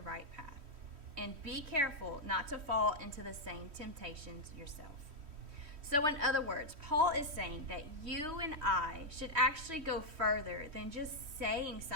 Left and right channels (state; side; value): late; left; 3.1 ms